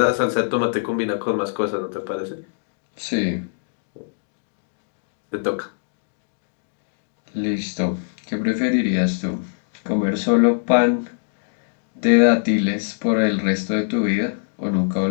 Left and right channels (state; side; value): silent; right; digital silence